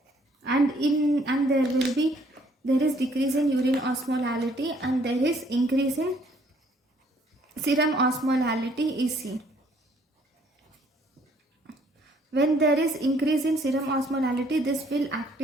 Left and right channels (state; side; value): normal; both; correlation 0.63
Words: and there is decrease in urine osmolality, and there is increase in serum osmolality is seen. When there is increase in serum osmolality, this will